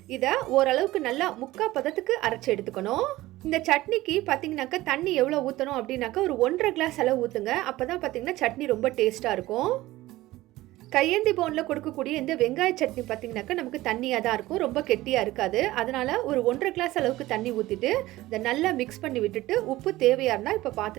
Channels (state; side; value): quieter; left; 17.4 dB